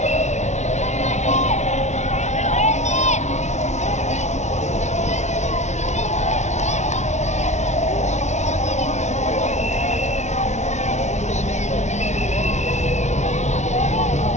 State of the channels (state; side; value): late; right; 0.33 ms